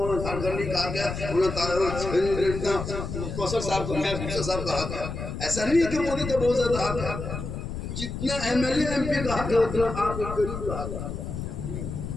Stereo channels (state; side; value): noise; left; rumble, 6 dB below the sound